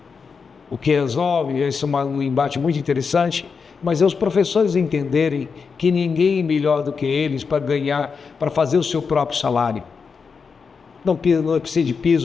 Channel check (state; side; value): quieter; right; 5.5 dB